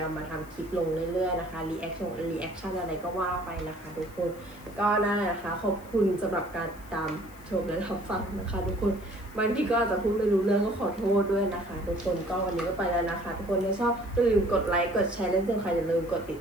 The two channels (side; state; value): left; noise; hiss, 24 dB below the sound